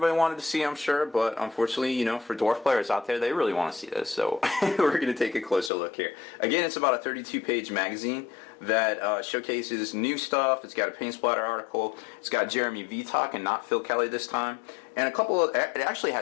wanted to see, I'm sure, but unfortunately, you know, for Dwarf players out there, they really want to see this. So we're going to take a closer look here. Again, it's about a 32-page magazine that showcases new stuff. It's got a paint splatter article. It's got Jeremy Vitok and not Phil Kelly this time. And a couple of, it actually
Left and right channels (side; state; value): right; drops out; at 5.7 s